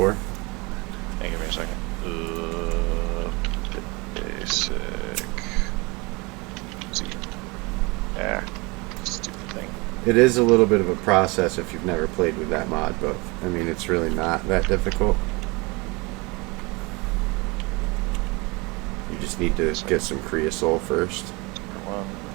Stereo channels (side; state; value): left; quieter; 26.3 dB